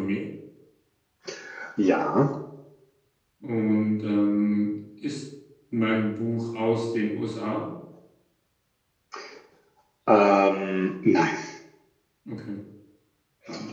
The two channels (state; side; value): identical; both; correlation 1.00